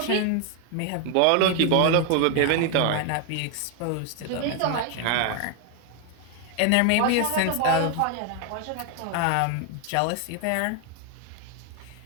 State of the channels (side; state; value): both; different; correlation 0.01